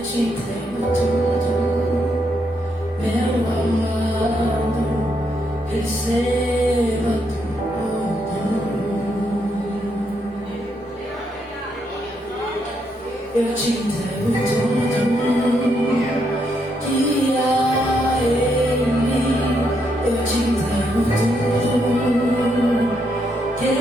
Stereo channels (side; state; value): both; normal; correlation 0.77